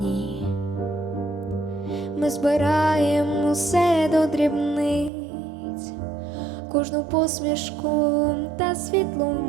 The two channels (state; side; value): drops out; left; at 5.1 s